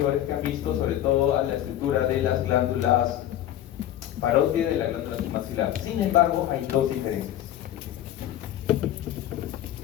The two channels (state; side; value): quieter; right; 12.2 dB